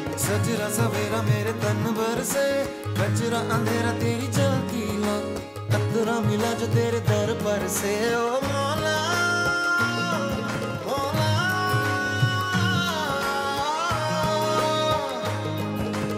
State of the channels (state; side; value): identical; both; correlation 1.00